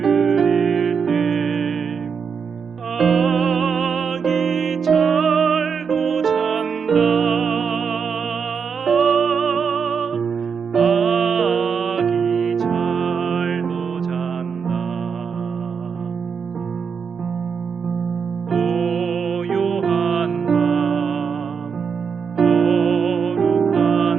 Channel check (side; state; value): left; quieter; 6.2 dB